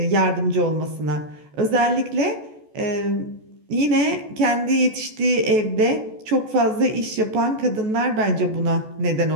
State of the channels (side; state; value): left; late; 14 ms